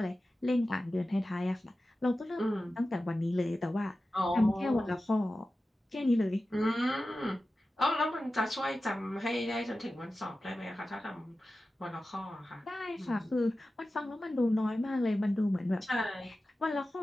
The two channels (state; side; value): normal; both; correlation 0.94